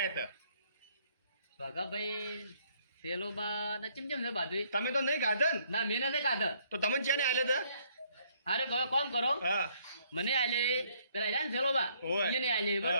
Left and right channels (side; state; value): both; inverted; correlation -0.66